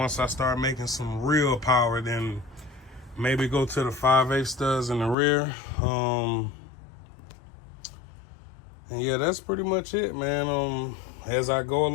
I start making some real power, then maybe go to the 5/8 studs in the rear. And yeah, that's pretty much it, man. As I go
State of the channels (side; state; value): right; drops out; at 5.2 s